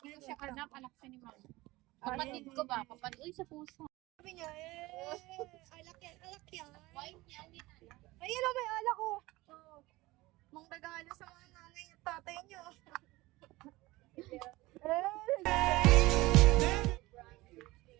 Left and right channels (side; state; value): left; quieter; 20.0 dB